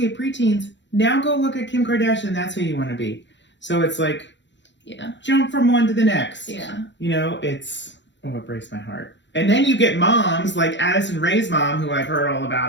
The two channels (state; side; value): late; right; 0.53 ms